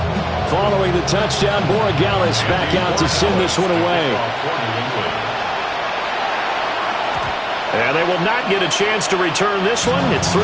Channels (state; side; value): identical; both; correlation 1.00